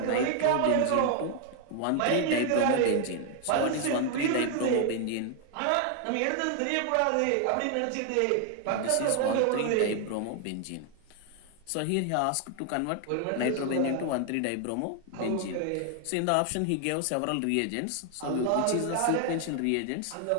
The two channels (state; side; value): different; both; correlation 0.00